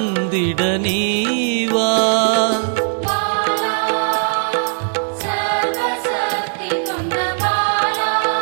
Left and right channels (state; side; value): silent; left; 67 dB below the other